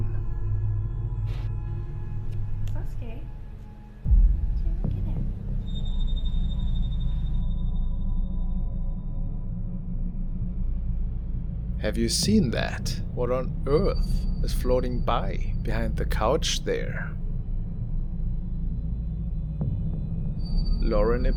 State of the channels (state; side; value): identical; both; correlation 1.00